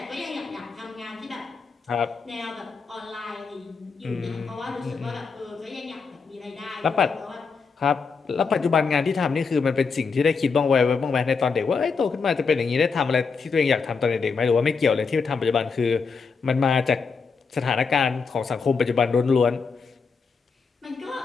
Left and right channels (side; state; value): right; quieter; 5.1 dB